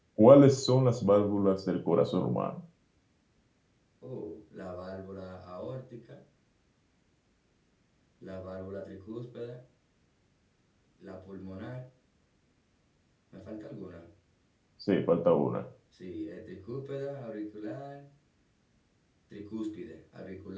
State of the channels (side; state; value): both; identical; correlation 1.00